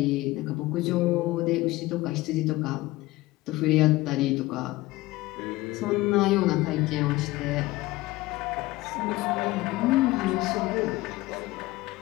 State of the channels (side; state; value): right; quieter; 19.1 dB